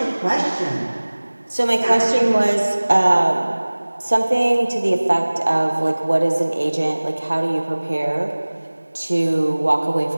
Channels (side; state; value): both; inverted; correlation -1.00